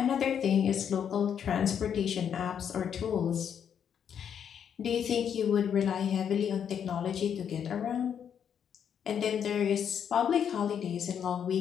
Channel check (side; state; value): right; quieter; 8.3 dB